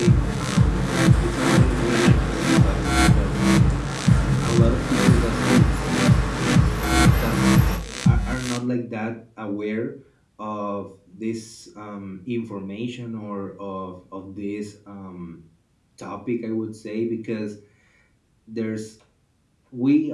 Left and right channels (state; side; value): identical; both; correlation 1.00